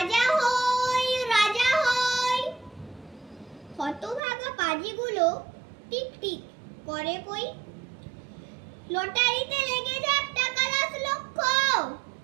হই রাজা হই, হতভাগা পাজিগুলো টিকটিক করে কই। লটারিতে লেগে যাক টাকা ১০ লক্ষ,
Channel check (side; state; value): left; drops out; at 4.2 s